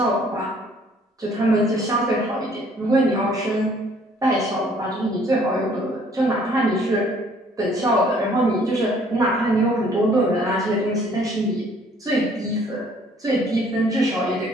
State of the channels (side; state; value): both; normal; correlation 0.59